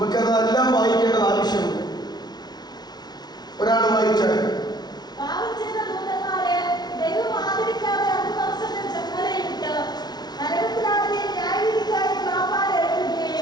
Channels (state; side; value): late; right; 0.19 ms